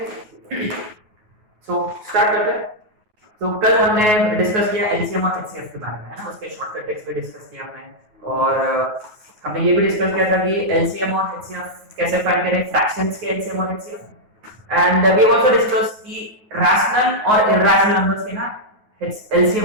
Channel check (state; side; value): late; left; 9.4 ms